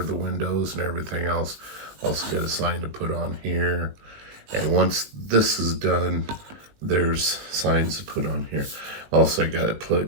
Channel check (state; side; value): late; left; 19 ms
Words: the windows and everything else. Also got a sign to put on here. And once this is done, there's signs to put on here. Also, I got to